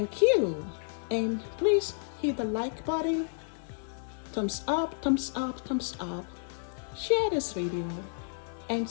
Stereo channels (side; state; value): right; silent; 57 dB below the other